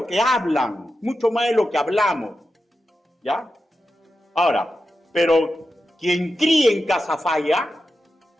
que hablan, mucho más de lo que hablamos, ¿ya? Ahora, pero quien críe en casa falla,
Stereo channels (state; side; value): normal; both; correlation 0.90